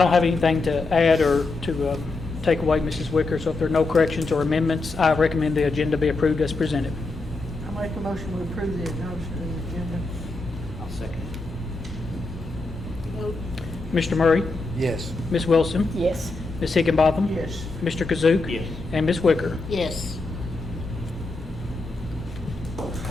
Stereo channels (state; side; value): quieter; right; 3.4 dB